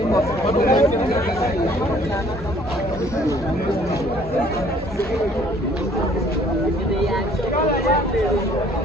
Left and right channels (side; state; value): both; normal; correlation 0.58